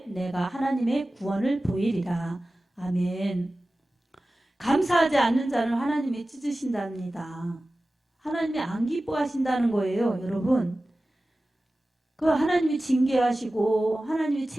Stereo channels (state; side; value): normal; both; correlation 0.96